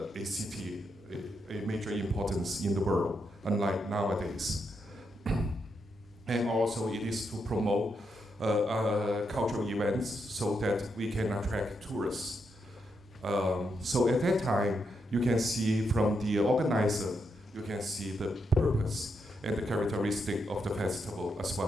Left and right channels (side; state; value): both; normal; correlation 0.81